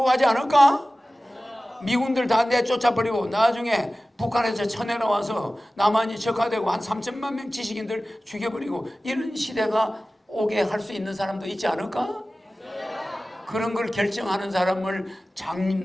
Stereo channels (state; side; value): normal; both; correlation 0.96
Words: 가지 않을까? 미군들 다 내쫓아버리고 나중에 북한에서 쳐내려와서 남한이 적화되고 한 3천만 명 지식인들 죽여버리고 이런 시대가 오게 할 수 있는 사람도 있지 않을까? 그런 걸 결정하는 사람을